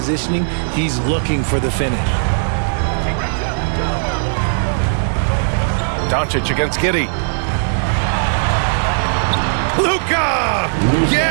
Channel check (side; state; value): left; silent; digital silence